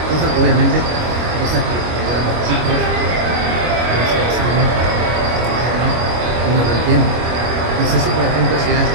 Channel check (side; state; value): left; late; 25 ms